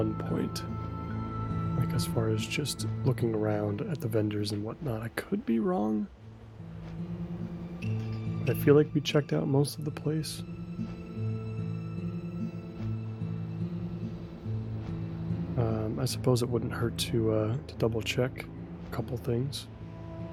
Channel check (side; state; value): both; identical; correlation 1.00